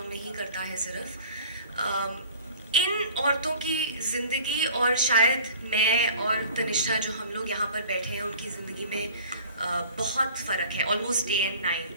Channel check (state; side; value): inverted; both; correlation -0.46